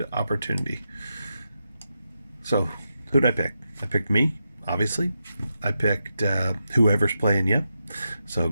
opportunity. So who'd I pick? I picked me, obviously. I picked whoever's playing yet. So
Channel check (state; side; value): inverted; both; correlation -0.87